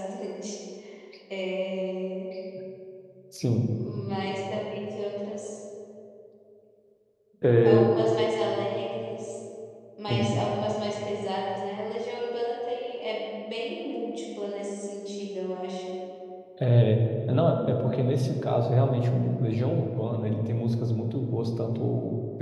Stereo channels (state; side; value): identical; both; correlation 1.00